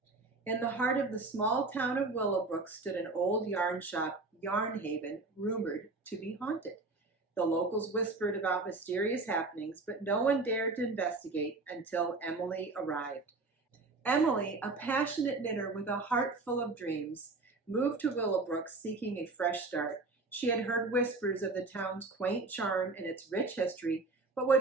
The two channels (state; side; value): quieter; left; 3.5 dB